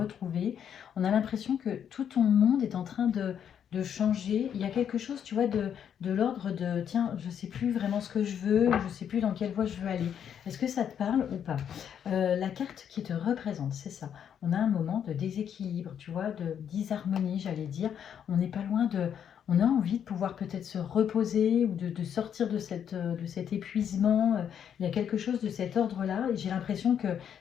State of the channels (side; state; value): right; quieter; 8.7 dB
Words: On a l'impression que tout ton monde est en train de changer. Il y a quelque chose, tu vois, de l'ordre de tiens, je ne sais plus vraiment ce que je veux, je ne sais plus dans quelle voie je veux aller. Est-ce que ça te parle ou pas? La carte qui te représente, c'est ça. On a un moment de déséquilibre, tu vois, de disharmonie, j'allais dire. On n'est pas loin de... On a envie de pouvoir peut-être se reposer ou de sortir de cet épuisement. Il y a quelque chose de cet ordre-là. Et j'ai l'impression que